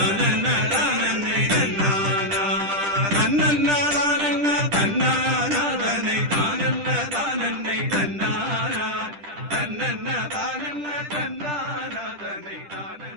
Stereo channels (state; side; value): late; left; 10 ms